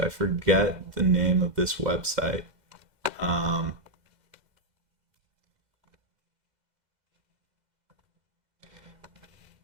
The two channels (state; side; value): late; left; 2.0 ms